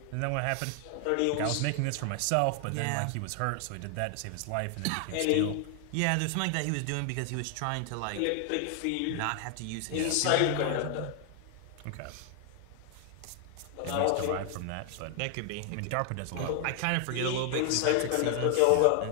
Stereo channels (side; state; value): both; different; correlation 0.00